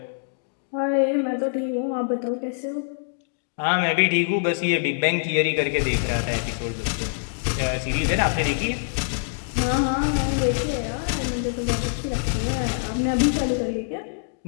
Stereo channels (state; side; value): silent; right; digital silence